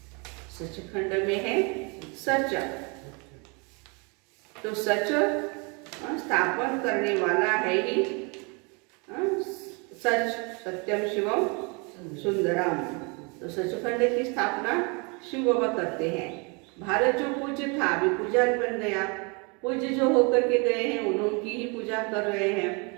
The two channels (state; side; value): quieter; left; 31.9 dB